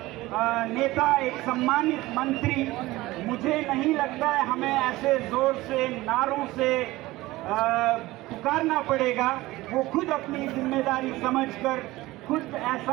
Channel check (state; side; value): quieter; left; 18.7 dB